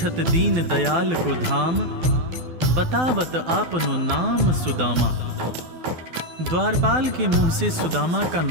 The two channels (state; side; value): late; left; 12 ms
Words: दीन दयाल को धाम, बतावत आपनो नाम सुदामा। द्वारपाल के मुंह से सुदामा का